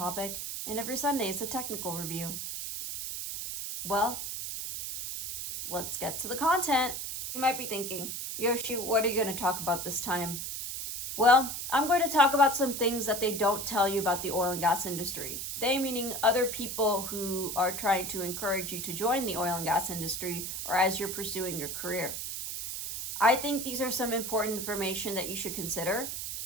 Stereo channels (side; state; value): right; noise; hiss, 5 dB below the sound